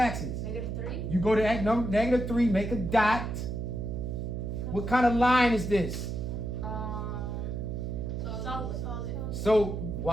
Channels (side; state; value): right; noise; hum, 4 dB below the sound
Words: -3. You go to -3, make a dot. What kind of line is this? Solid. So